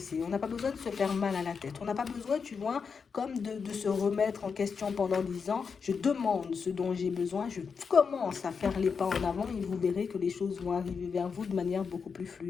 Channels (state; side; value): quieter; right; 5.8 dB